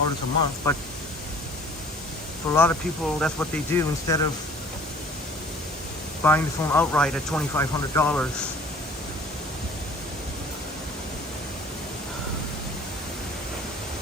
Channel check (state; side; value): normal; both; correlation 0.50